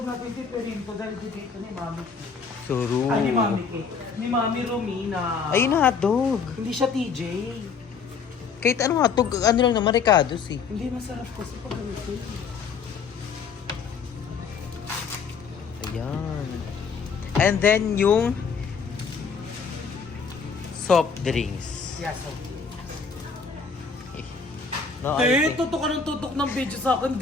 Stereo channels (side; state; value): right; quieter; 5.6 dB